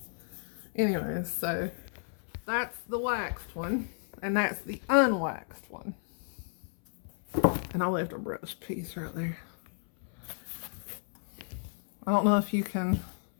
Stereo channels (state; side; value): silent; right; 56 dB below the other